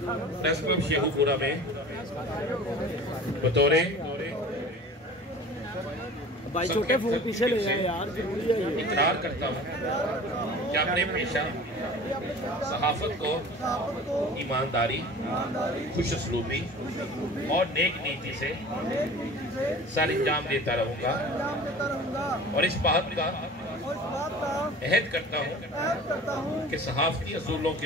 प्रेस क्लब शेखुपुरा में बतौर भाई छोटे फोन पीछे ले जाए यार, जरूरी है ये। इकरार करता हूँ कि अपने पेशा सहाफत को ईमानदारी, खुशसलूबी और नेक नीति से सर अंजाम देता रहूँगा और इस बात का अहद करता हूँ कि सहाफती असूलों के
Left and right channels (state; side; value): normal; both; correlation 0.41